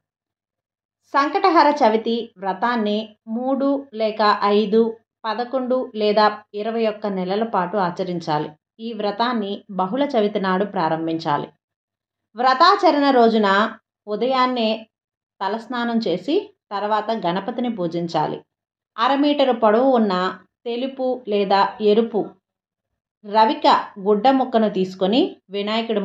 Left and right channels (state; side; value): identical; both; correlation 1.00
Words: సంకటహర చవితి వ్రతాన్ని 3 లేక 5, 11 లేదా 21 నెలల పాటు ఆచరించాలి. ఈ వ్రతాన్ని బహుళ చవితి నాడు ప్రారంభించాలి. వ్రతాచరణ రోజున ఉదయాన్నే తలస్నానం చేసి తర్వాత గణపతిని పూజించాలి. 1/2 మీటరు పొడవు ఉన్న తెలుపు లేదా ఎరుపు రవిక గుడ్డ ముక్కను తీసుకొని వినాయకుడి